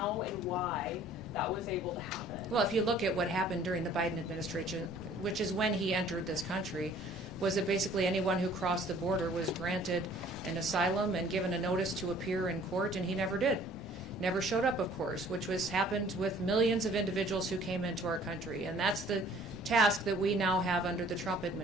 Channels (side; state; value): both; normal; correlation 0.54